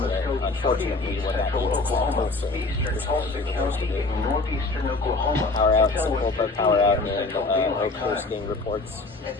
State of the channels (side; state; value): right; quieter; 3.4 dB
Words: what happened eastern Tulsa County in northeastern Oklahoma. Power out, power out in Oak Coast getting reports. At